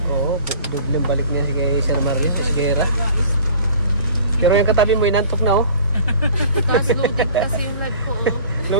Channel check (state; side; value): inverted; both; correlation -0.46